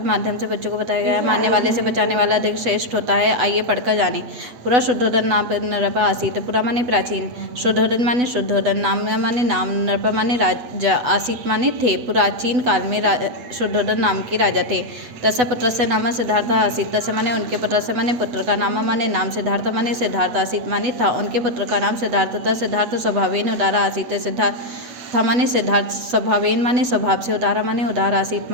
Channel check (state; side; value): late; left; 8.1 ms